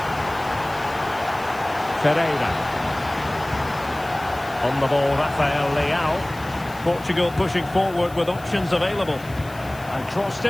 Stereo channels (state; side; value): noise; left; hiss, 21 dB below the sound